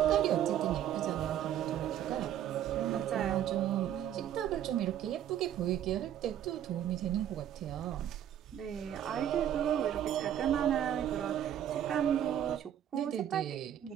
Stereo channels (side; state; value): left; quieter; 10.6 dB